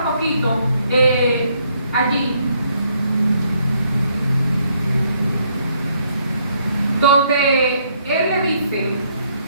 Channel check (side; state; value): both; inverted; correlation -0.71